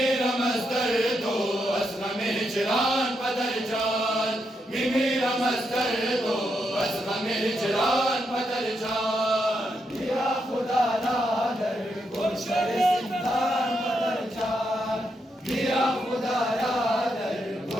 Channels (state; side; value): normal; both; correlation 0.82